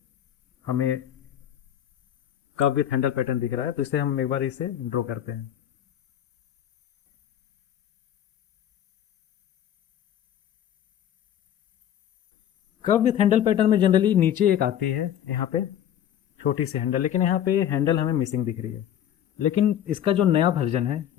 हमें कप विथ हैंडल पैटर्न दिख रहा है। तो इसे हम एक बार इसे ड्रॉ करते हैं। कप विथ हैंडल पैटर्न में जनरली नीचे एक आती है यहाँ पे छोटी सी हैंडल, लेकिन यहाँ पे हैंडल हमें मिसिंग दिख रही है। लेकिन इसका जो नया वर्जन है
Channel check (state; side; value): quieter; right; 10.5 dB